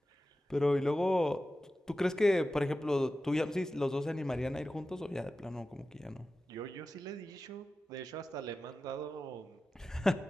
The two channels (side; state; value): both; normal; correlation 0.94